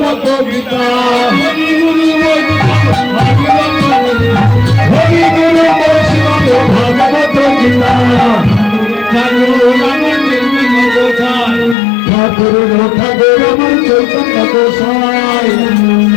গীতা হরি গুরু বৈষ্ণব ভাগবত গীতা ঠাকুর ঠাকুর আমার চৈতন্য গোসাই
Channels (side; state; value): right; drops out; at 11.8 s